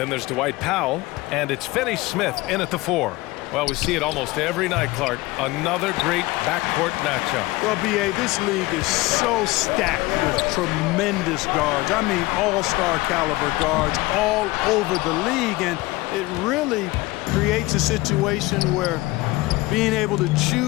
there's Dwight Powell, and it's Finney Smith in at the 4. Well, we see it almost every night, Clark. Another great backcourt matchup. Well, B.A., this league is so stacked with tremendous guards. I mean, all-star caliber guards all over the league, and it really creates a situation where being able to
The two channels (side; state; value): right; quieter; 20.6 dB